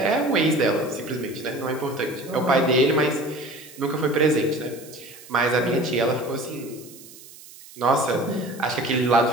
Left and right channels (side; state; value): right; noise; hiss, 19 dB below the sound